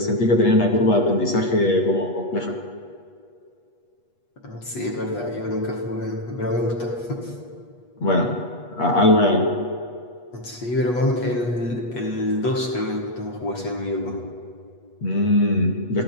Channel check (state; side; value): late; right; 8.3 ms